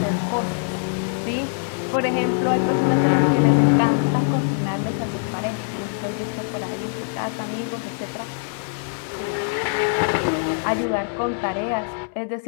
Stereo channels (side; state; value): right; silent; 63 dB below the other